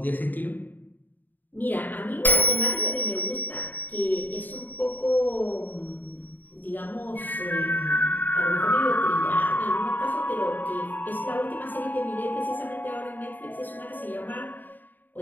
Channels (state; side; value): late; right; 0.089 ms